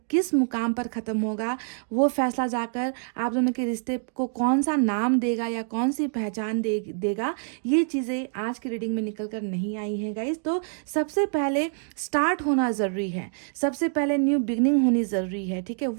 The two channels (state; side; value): silent; left; digital silence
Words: किस मुकाम पर ख़त्म होगा, वो फैसला जाकर आप दोनों के रिश्ते को कौन सा नाम देगा या कौन सी पहचान देगा, ये चीज़ें आज की रीडिंग में निकल कर नहीं आई हैं गाइस। तो सबसे पहले स्टार्ट होना ज़रूरी है, सबसे पहले न्यू बिगनिंग होनी ज़रूरी है। ठीक है,